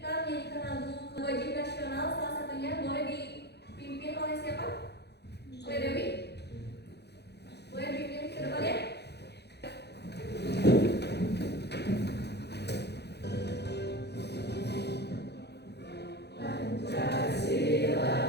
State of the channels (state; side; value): late; right; 0.48 ms